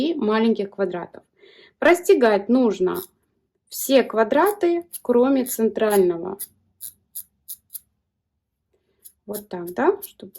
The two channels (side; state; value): both; identical; correlation 1.00